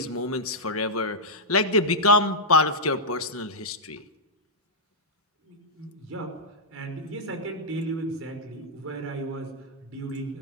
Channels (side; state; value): both; normal; correlation -0.09